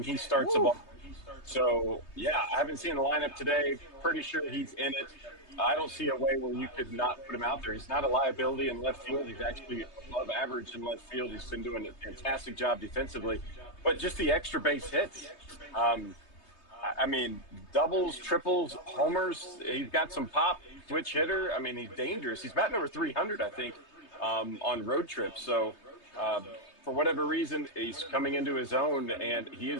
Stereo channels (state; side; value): late; right; 3.2 ms